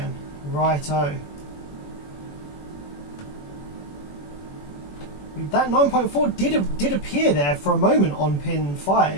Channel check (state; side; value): late; right; 21 ms